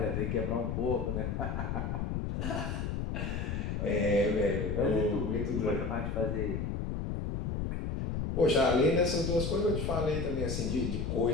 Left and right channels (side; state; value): left; noise; rumble, 2 dB below the sound